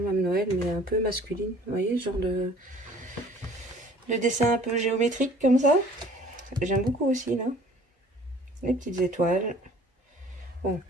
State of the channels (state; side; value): normal; both; correlation 0.52